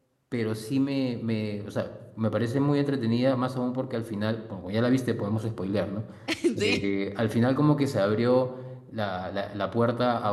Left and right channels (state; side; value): identical; both; correlation 1.00